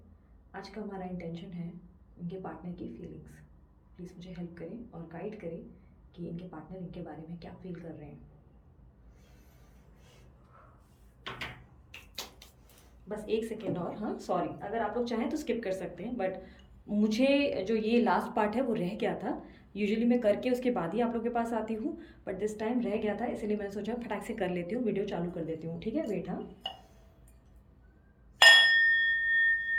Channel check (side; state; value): both; identical; correlation 1.00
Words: आज का हमारा इंटेंशन है इनके पार्टनर की फीलिंग्स। प्लीज़ मुझे हेल्प करें और गाइड करें कि इनके पार्टनर इनके बारे में क्या फील कर रहे हैं। बस एक सेकेंड और, हाँ, सॉरी, अगर आप लोग चाहें तो स्किप कर सकते हैं, बट मुझे जो ये लास्ट पार्ट है वो रह गया था। यूजुअली मैं करके उसके बाद ही आप लोग के पास आती हूँ, बट दिस टाइम रह गया था, इसलिए मैंने सोचा फटाक से कर लेती हूँ, वीडियो चालू कर देती हूँ, ठीक है। वेट, हाँ।